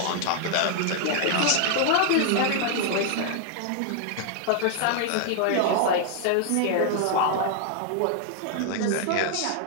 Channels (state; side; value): different; both; correlation 0.00